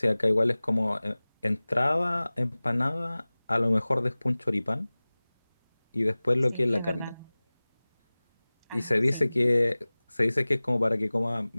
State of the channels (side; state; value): both; inverted; correlation -0.99